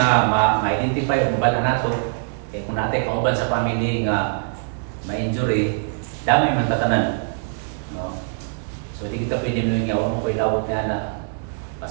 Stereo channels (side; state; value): left; silent; digital silence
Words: ma-identify ug mabalaan nato kay kung natin kauban sa family nga ma-injury, damay man tatanan. No? So di kita pwede mo nga mo koy lawot nga na